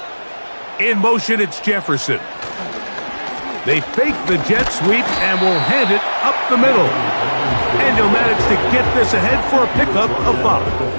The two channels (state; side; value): inverted; both; correlation -1.00